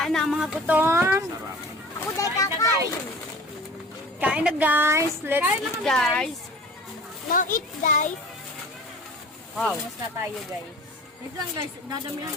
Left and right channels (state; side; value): normal; both; correlation 0.42